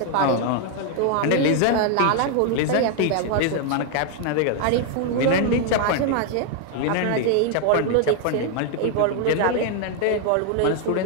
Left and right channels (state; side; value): different; both; correlation 0.01